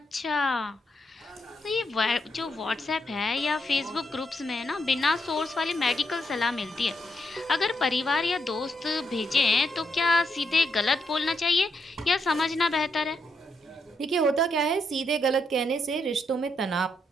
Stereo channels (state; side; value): normal; both; correlation 0.79